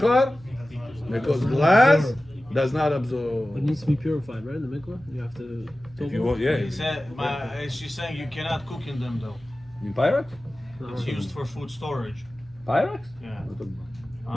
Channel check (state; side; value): noise; left; hum, 26 dB below the sound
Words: Because glass does not absorb. It needs to be purified, right? In the mikvah, you have to. If you want, yeah. He said, she's saying you cannot cook in them though. In Pyrex? It's used for food storage. Pyrex? Yeah.